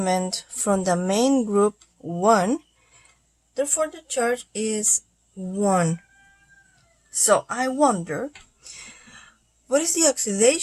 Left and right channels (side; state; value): both; identical; correlation 1.00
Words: from the main group 1, therefore the charge is 1. So I wonder, what is the